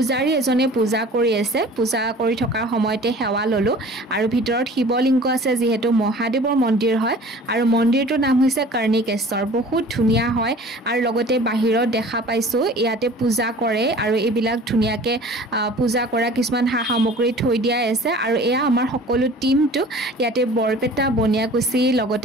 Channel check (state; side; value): normal; both; correlation 0.45